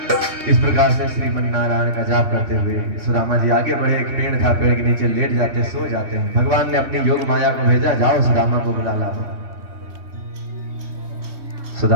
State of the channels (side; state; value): left; late; 3.2 ms